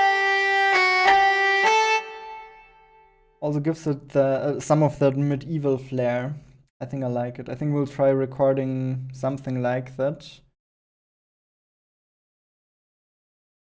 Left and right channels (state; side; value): identical; both; correlation 1.00